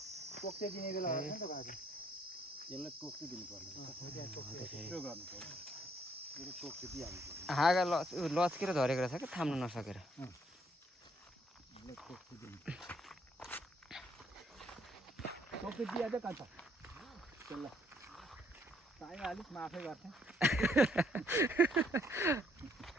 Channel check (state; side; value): normal; both; correlation 0.68